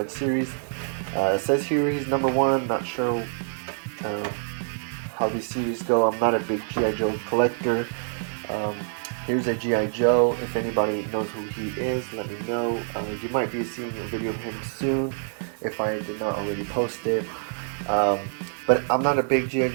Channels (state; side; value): silent; left; 61 dB below the other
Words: series. It says here he's #1. Not sure how these series go. I'm not a big G.I. Joe collector. Here's a G.I. Joe. If anybody knows who he is, let me know. You might be seeing a video of him soon if I did not already post it. But I'm not a big G.I.